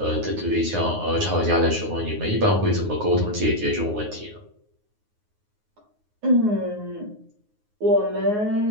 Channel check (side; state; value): left; late; 9.6 ms